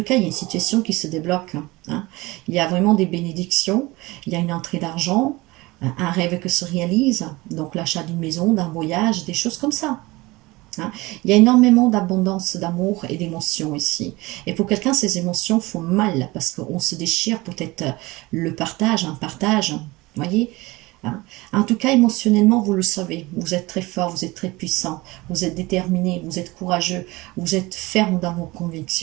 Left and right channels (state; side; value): quieter; left; 21.6 dB